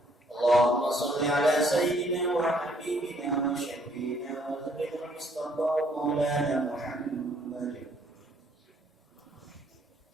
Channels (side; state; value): both; normal; correlation 0.66